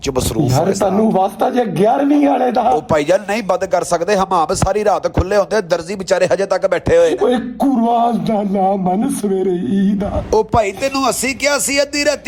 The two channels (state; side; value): identical; both; correlation 1.00